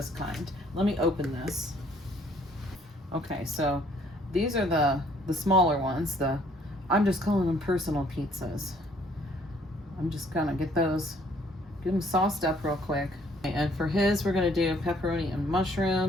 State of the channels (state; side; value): normal; both; correlation 0.62